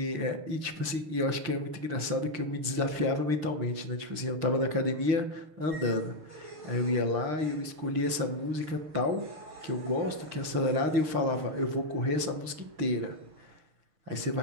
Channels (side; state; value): left; late; 6.5 ms